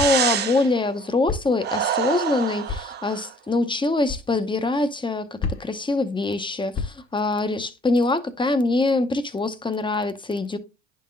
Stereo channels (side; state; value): both; normal; correlation 0.59